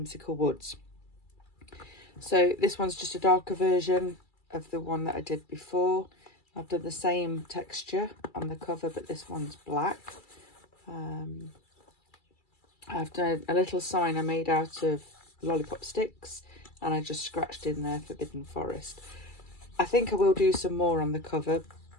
Woods. So this one's just a darker version of the one that I did before. I've done the same texture on the cover, but this one's black. I've done a little sign I made out of lollipop sticks, and I just scratched in there Forbidden Forest. I think I will do some more on the cover,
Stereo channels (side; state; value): right; late; 2.3 ms